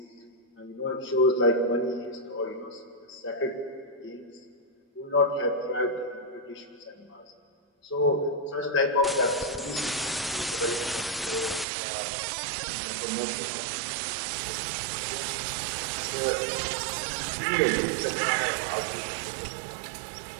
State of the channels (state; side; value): drops out; left; at 11.7 s